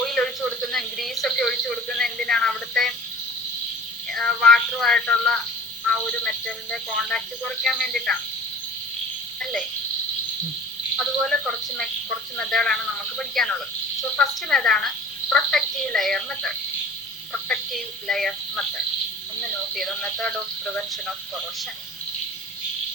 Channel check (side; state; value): both; normal; correlation 0.43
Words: ഒഴിച്ചു കൊടുക്കുന്ന, ഗ്രീസ് ഒക്കെ ഒഴിച്ചു കൊടുക്കുന്ന എന്തിനാണ്? അവിടുത്തെ വാട്ടറുമായിട്ടുള്ള ആ ഒരു മെറ്റലിന്റെ കോണ്ടാക്ട് കുറയ്ക്കാൻ വേണ്ടിയിട്ടാണ് അല്ലേ? അതുപോലെ കുറച്ച് മെത്തേഡാണ് നമുക്ക് പഠിക്കാനുള്ളത്. സോ ഫസ്റ്റ് മെത്തേഡാണ് പ്രൊട്ടക്റ്റീവ് ലെയർ മെത്തേഡ്. ഒന്ന് നോട്ട് ചെയ്തോ, method of prevention of corrosion.